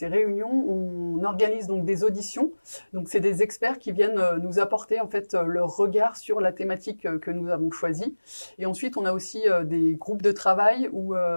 réunions, on organise donc des auditions. Donc c'est des experts qui viennent nous apporter en fait leur regard sur la thématique que nous avons choisie. Et ensuite on a aussi des groupes de travail où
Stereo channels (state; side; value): inverted; both; correlation -1.00